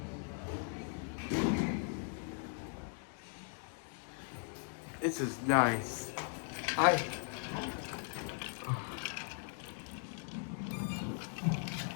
This is nice. Hi.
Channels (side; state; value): right; silent; 52 dB below the other